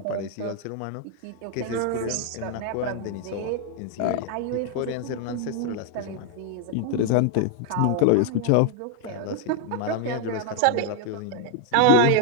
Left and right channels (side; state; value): both; different; correlation 0.01